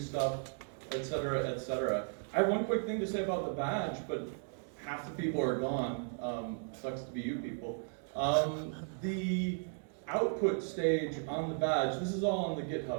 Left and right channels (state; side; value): silent; left; 54 dB below the other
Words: etc., etc. I have one quick thing to say about the badge, but half the people are gone. Sucks to be you people. The output stage on the badge, this is all on the